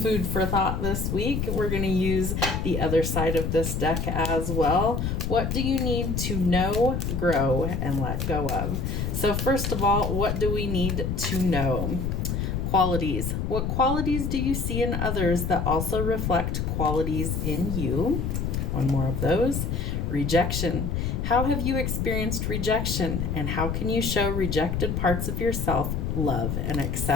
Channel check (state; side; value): noise; left; rumble, 1 dB below the sound